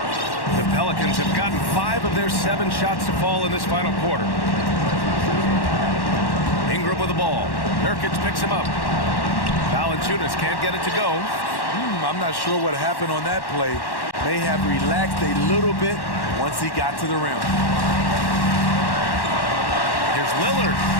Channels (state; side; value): late; right; 1.1 ms